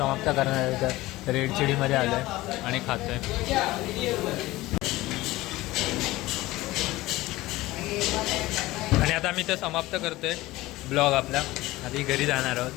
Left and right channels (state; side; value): quieter; right; 18.4 dB